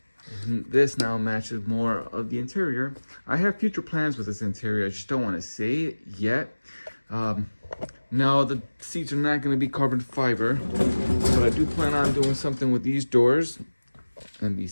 This now matches more of the interior. I have future plans with this interior. I just don't want to say it yet. Now the seats are not going to be carbon fiber, but I do plan on doing something with these doors and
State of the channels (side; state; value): both; inverted; correlation -1.00